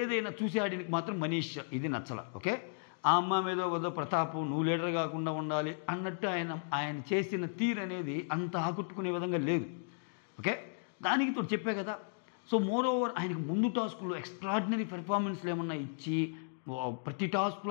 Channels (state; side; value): silent; right; digital silence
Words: చూసి ఆడికి మాత్రం మనీష్ ఇది నచ్చల, ఓకే. ఆ అమ్మ మీద వద్ద ప్రతాపం నువ్వు లీడర్ కాకుండా ఉండాలి అన్నట్టు ఆయన చేసిన తీరు అనేది అంత ఆకట్టుకునే విధంగా లేదు, ఓకే. దానికి తోడు చెప్పే కదా. సో మోర్ ఓవర్ ఆయనకు ముందు టాస్కుల్లో ఎక్స్ట్రాడినరీ పెర్ఫార్మెన్స్లు ఏమన్నా ఇచ్చి ప్రతి